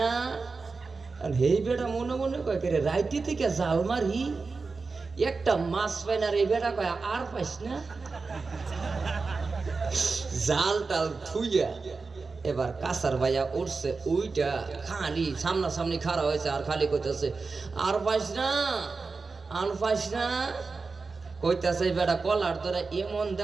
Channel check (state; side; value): quieter; left; 4.3 dB